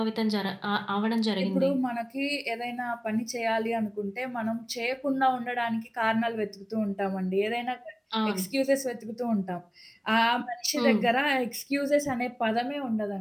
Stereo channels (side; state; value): both; identical; correlation 1.00